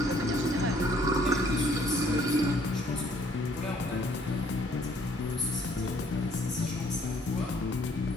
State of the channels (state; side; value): normal; both; correlation 0.62